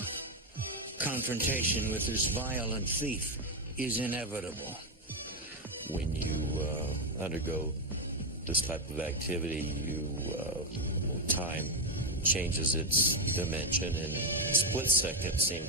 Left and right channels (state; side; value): normal; both; correlation 0.06